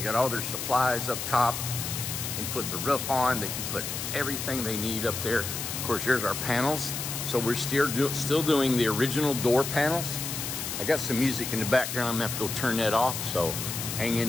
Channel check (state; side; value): noise; left; hiss, 4 dB below the sound